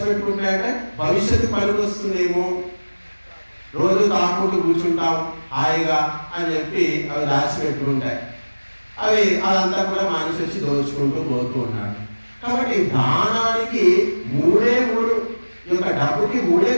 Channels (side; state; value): both; inverted; correlation -1.00